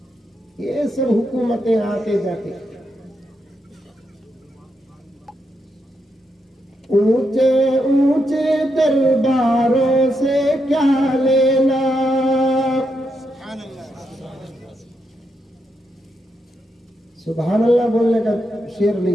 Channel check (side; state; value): both; normal; correlation 0.82